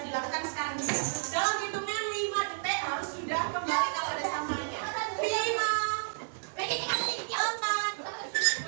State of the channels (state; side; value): silent; left; 57 dB below the other